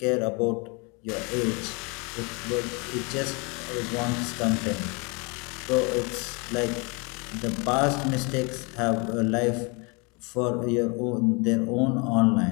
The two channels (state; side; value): quieter; right; 30.9 dB